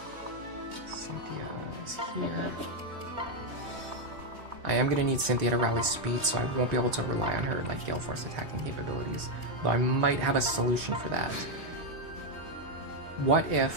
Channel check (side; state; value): left; late; 3.4 ms